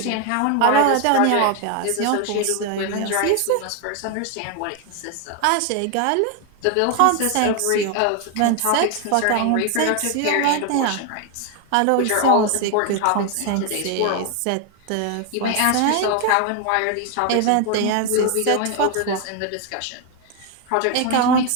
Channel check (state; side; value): different; both; correlation 0.01